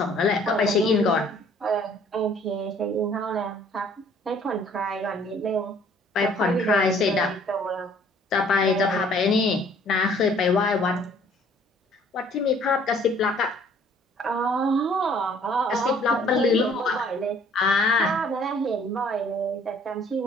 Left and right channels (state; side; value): normal; both; correlation 0.58